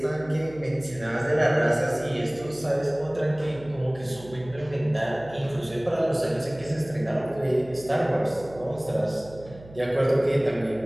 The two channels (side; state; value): right; noise; hum, 19 dB below the sound